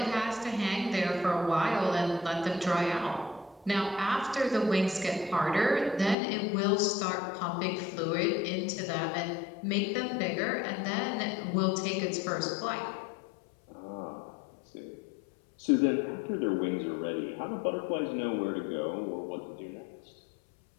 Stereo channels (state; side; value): drops out; right; at 6.2 s